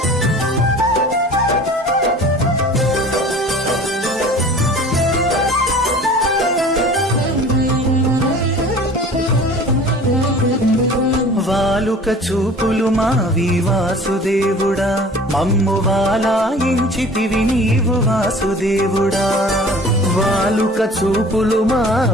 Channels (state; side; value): normal; both; correlation 0.45